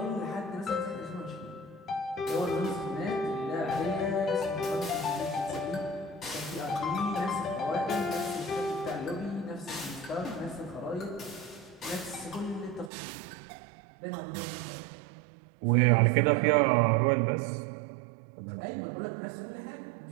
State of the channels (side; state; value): left; drops out; at 12.9 s